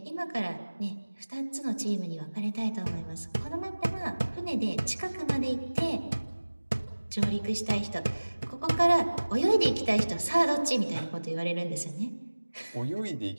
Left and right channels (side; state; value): both; inverted; correlation -1.00